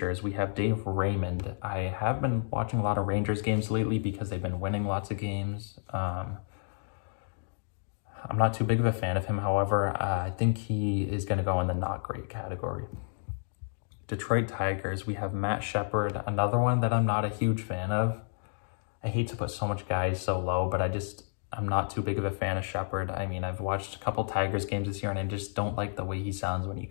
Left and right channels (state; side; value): silent; right; digital silence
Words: we have Dave Raymond. I have been watching a lot of Rangers games lately because they've been winning lots of games. I'm not too big of a fan of him, however. I think he is going to go in the not great category. Detroit Tigers, we have Matt Shepard, another one that I'm not a huge fan of. I hate to put so much guys so low, but I'm not too big of a fan of Shepard. I mean, I've watched a couple Tigers games this year, and I just don't like the way he sounds when he